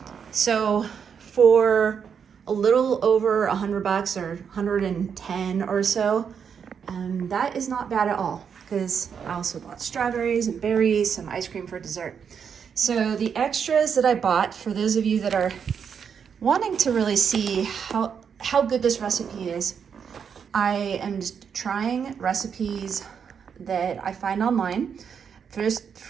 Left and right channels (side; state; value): left; quieter; 7.1 dB